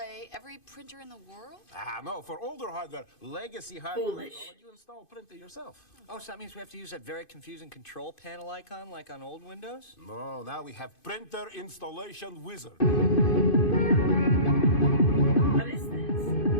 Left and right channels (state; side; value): late; right; 2.5 ms